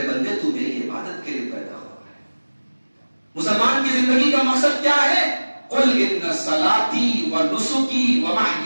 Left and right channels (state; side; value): inverted; both; correlation -1.00